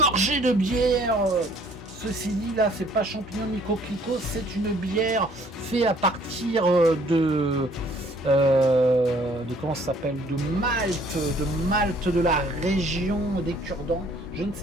de bière. Ceci dit, là, c'est pas champignon ni coquelicot, c'est une bière faite à partir de comment ça s'appelle, de Malte de la région des Cure-Dents. Je ne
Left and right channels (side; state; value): both; normal; correlation 0.59